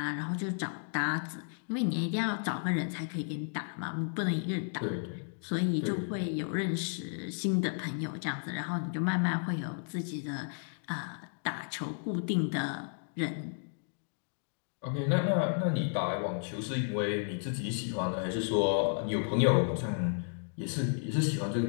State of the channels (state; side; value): silent; right; digital silence